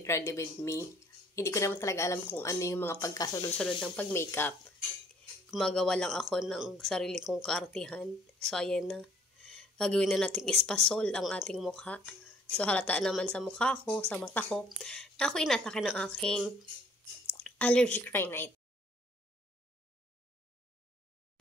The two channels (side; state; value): both; normal; correlation 0.60